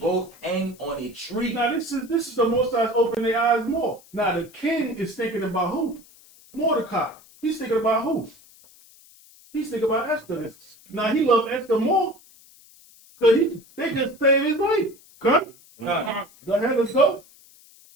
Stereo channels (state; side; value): noise; left; hiss, 25 dB below the sound